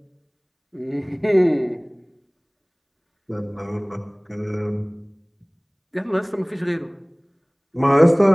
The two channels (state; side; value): identical; both; correlation 1.00